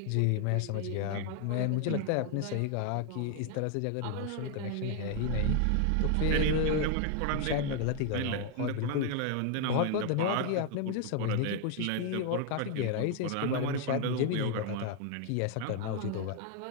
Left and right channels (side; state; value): both; different; correlation 0.00